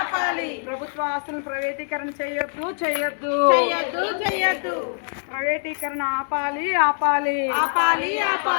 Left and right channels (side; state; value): right; silent; digital silence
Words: ప్రభుత్వ ఆస్తులను ప్రైవేటీకరణ చేయొద్దు, చేయొద్దు, చెయ్యొద్దు, చెయ్యొద్దు. ప్రైవేటీకరణ ఆపాలి, ఆపాలి, ఆపాలి,